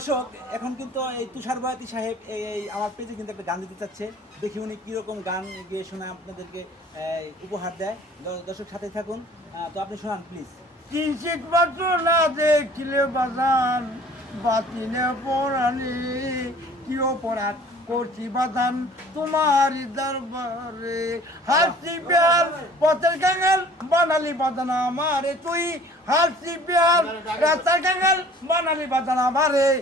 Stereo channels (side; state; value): both; normal; correlation 0.51